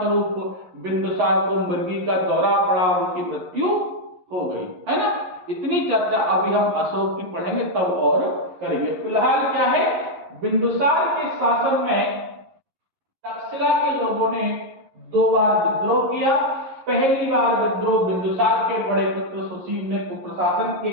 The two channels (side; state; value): left; late; 11 ms